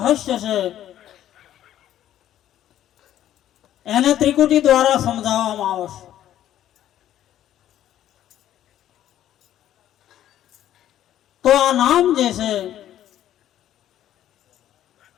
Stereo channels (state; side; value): quieter; right; 11.9 dB